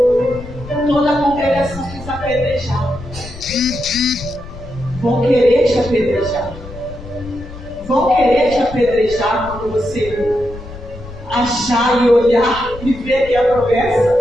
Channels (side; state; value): left; noise; rumble, 14 dB below the sound